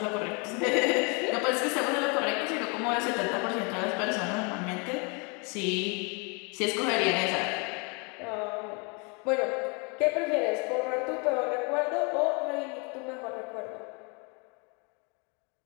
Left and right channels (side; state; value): right; quieter; 32.7 dB